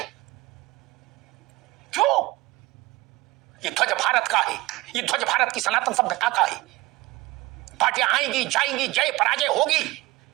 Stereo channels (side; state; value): left; quieter; 19.5 dB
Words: क्यों? ये ध्वज भारत का है, ये ध्वज भारत की सनातन सभ्यता का है। पार्टियां आएंगी जाएंगी, जय पराजय होगी,